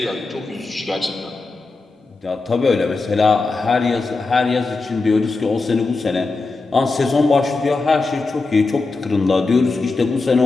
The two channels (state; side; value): quieter; right; 3.7 dB